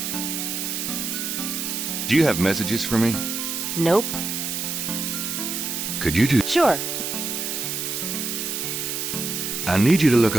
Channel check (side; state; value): right; noise; hiss, 3 dB below the sound